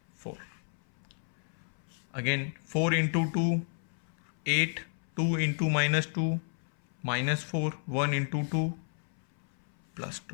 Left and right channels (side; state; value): right; silent; 56 dB below the other